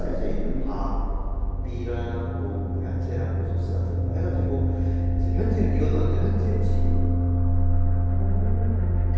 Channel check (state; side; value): identical; both; correlation 1.00